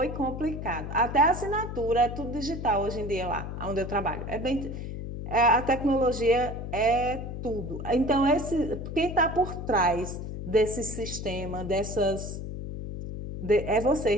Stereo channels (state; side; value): noise; left; hum, 7 dB below the sound